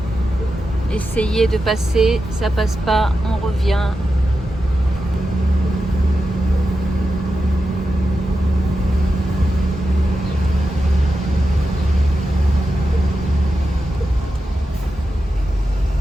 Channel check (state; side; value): normal; both; correlation 0.90